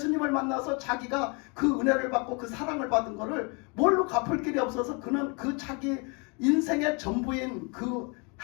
만나서 자기가 그 은혜를 받고 그 사랑을 받은 거를 뭘로 갚을 길이 없어서 그는 그 자기 인생의 전부인 그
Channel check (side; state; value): right; quieter; 32.3 dB